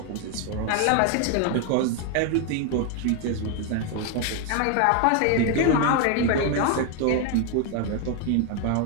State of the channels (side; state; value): both; different; correlation 0.01